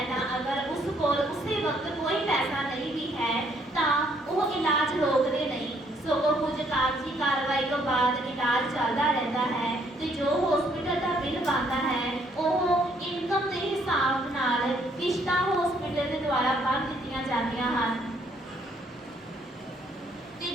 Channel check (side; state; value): both; normal; correlation 0.68